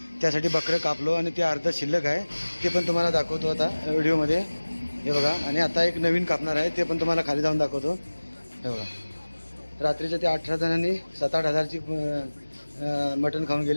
त्यासाठी बकरं कापलो आणि ते अर्ध शिल्लक आहे, ते पण तुम्हाला दाखवतो आता व्हिडिओमध्ये. हे बघा, आणि आता एक नवीन कापणार आहे, ते पण तुम्हाला खाली जाऊन दाखवतो. हे बघा, रात्रीच्या ते 18 जणांनी 7-8 हजारची मटण खाऊन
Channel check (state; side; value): inverted; both; correlation -1.00